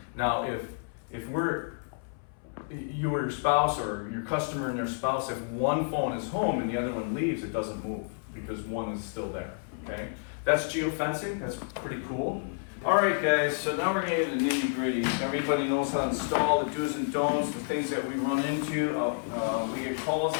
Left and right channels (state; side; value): silent; right; 58 dB below the other